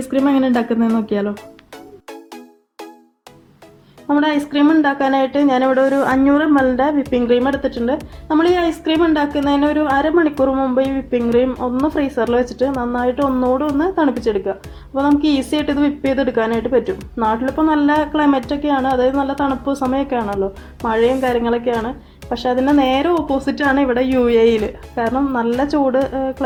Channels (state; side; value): identical; both; correlation 1.00